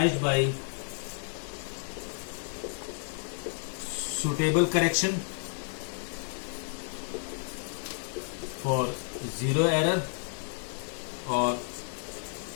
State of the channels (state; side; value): silent; right; digital silence